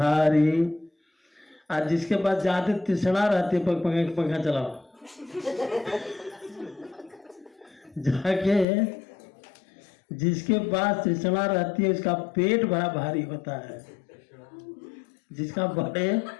आज जिसके पास ज्यादा तृष्णा रहती है, पंखा चलाओ जाके, जिसके पास तृष्णा रहती है उसका पेट बड़ा भारी होता है। जिसका बड़े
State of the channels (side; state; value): right; drops out; at 8.7 s